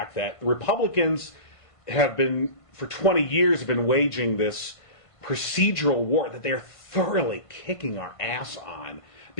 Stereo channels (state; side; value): late; right; 1.5 ms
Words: that Republicans have been for 20 years have been waging this procedural war that they're thoroughly kicking our ass on